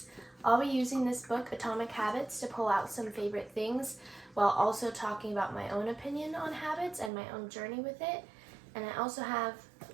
I'll be using this book, Atomic Habits, to pull out some favorite things while also talking about my own opinion on habits and my own journey with it. And I also have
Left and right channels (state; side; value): drops out; left; at 7.1 s